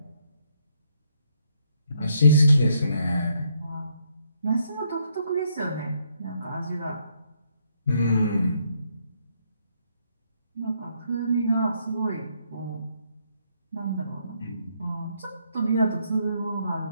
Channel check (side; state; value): both; inverted; correlation -0.73